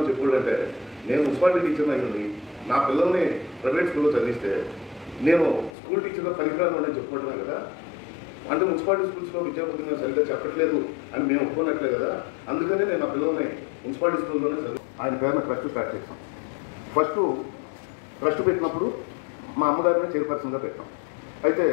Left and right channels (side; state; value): right; drops out; at 5.7 s